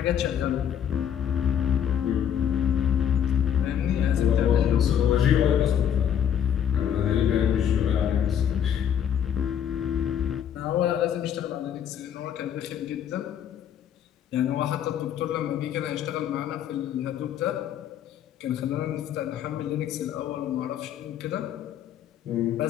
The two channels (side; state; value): right; quieter; 9.2 dB